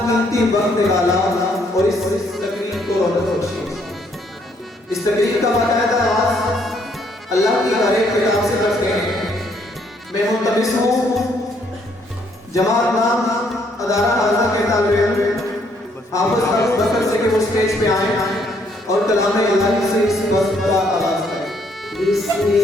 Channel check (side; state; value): both; normal; correlation 0.69